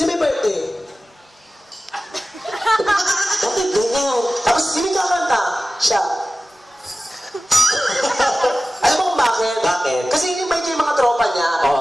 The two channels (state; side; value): normal; both; correlation 0.96